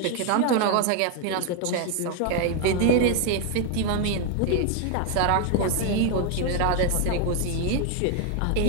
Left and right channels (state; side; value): different; both; correlation 0.01